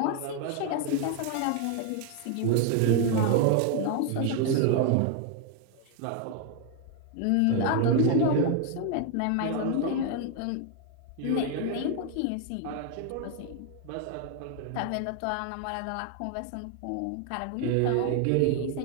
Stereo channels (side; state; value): both; different; correlation 0.01